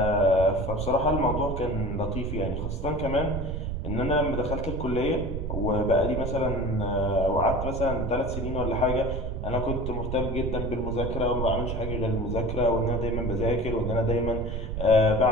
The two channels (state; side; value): noise; right; rumble, 3 dB below the sound